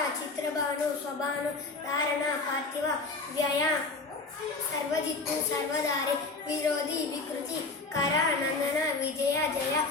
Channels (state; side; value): quieter; right; 3.7 dB